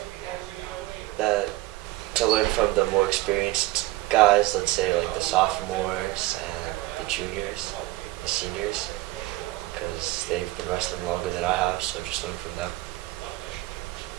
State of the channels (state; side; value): quieter; left; 18.2 dB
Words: That to learn from the more experienced guys, let's say the sophomores and the juniors, the seniors, because they've been wrestling longer than I have, so just learn from them.